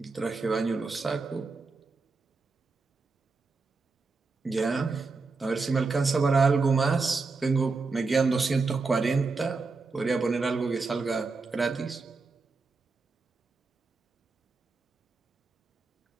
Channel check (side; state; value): left; quieter; 4.1 dB